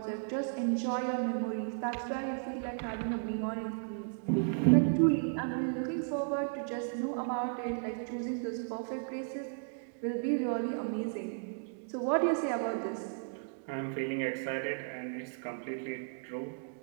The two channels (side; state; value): left; silent; digital silence